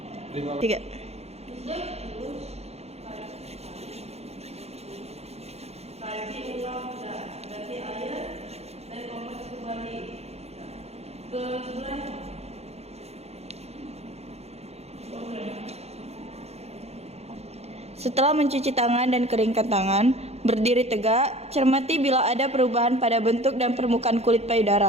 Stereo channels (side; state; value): left; late; 0.31 ms